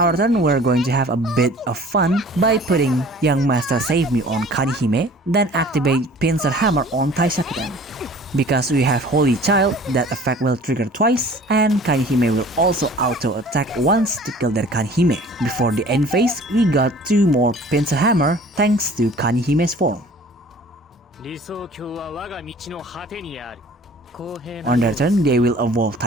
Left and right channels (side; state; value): both; normal; correlation 0.48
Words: turn, we're going to have a bit of fun by putting Young Master Save Me on Kanihime, then activate Pincer Hammer on Taishakuten. Because we have Holy Child, that effect will trigger twice, and Kanihime will also auto-attack once to kill their Kanihime. Before the end phase, we got 2 more Pincer Hammer thanks to Kanihime's form. On their turn, they will evolve